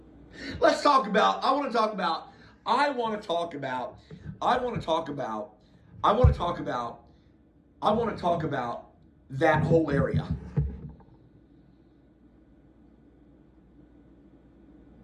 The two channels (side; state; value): both; identical; correlation 1.00